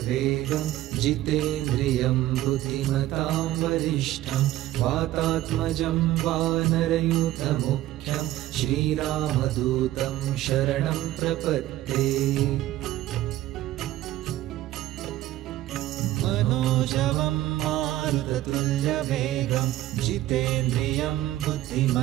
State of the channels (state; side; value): quieter; left; 14.8 dB